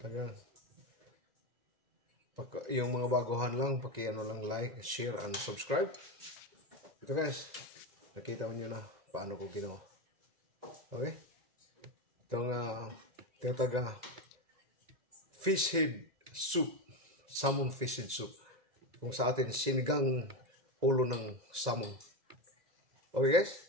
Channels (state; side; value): late; left; 2.0 ms